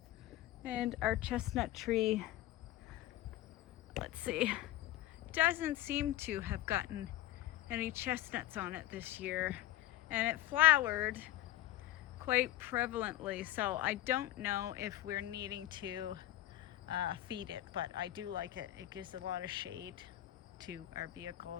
And our chestnut tree, let's see, doesn't seem to have gotten any chestnuts on it this year, and it flowered quite prevalently, so I don't know if we're needing to feed it, but I do like it. It gives a lot of shade to our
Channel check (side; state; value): right; quieter; 14.7 dB